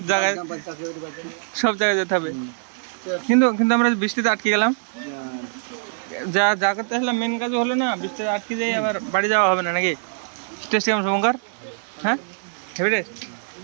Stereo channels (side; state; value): left; silent; digital silence